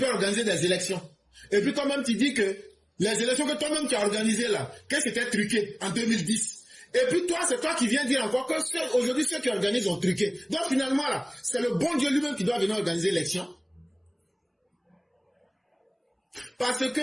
organiser des élections? Et puis toi-même tu dis que les élections que toi-même tu as organisées là, qu'est-ce qui était truqué en 2010? Et puis toi, c'est toi qui viens dire encore que aujourd'hui ceux qui organisent ont truqué. Donc finalement là, c'est le bon Dieu lui-même qui doit venir organiser l'élection. Parce que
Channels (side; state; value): both; identical; correlation 1.00